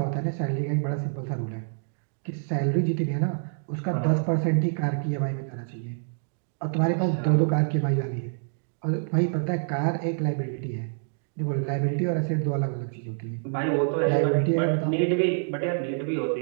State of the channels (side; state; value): left; silent; digital silence